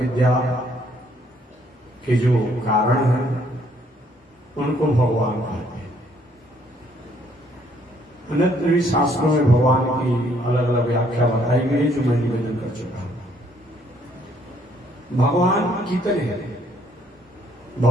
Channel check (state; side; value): normal; both; correlation 0.66